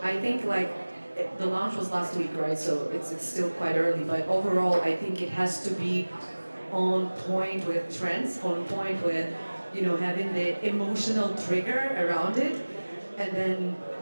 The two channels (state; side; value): inverted; both; correlation -1.00